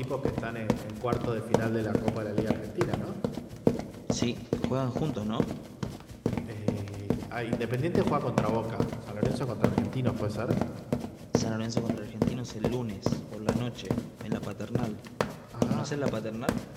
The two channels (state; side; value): identical; both; correlation 1.00